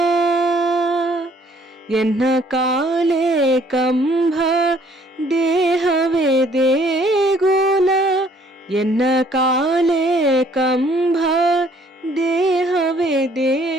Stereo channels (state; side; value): normal; both; correlation 0.61